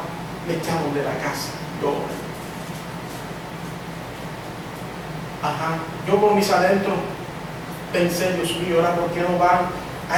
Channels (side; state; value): both; identical; correlation 1.00